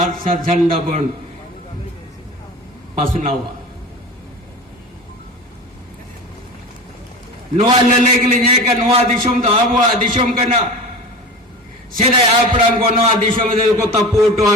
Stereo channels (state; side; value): normal; both; correlation 0.32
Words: सर झंडा बन पसनावा नोआ लले के लिए का नोआ दिशम तो आबुआ दिशम करना सीधा आपड़ांग को नोआ दिशम दे को तपोटो